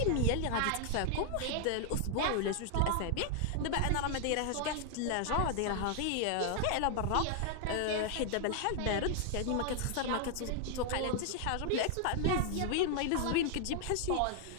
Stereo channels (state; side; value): different; both; correlation 0.00